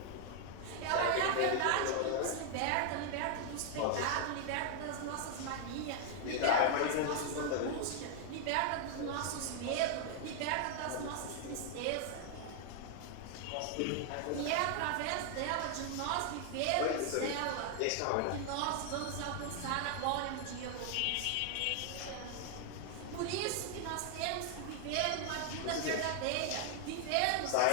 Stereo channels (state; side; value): different; both; correlation 0.00